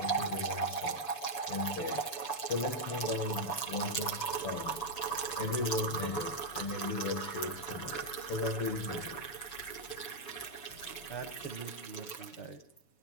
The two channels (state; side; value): late; right; 7.0 ms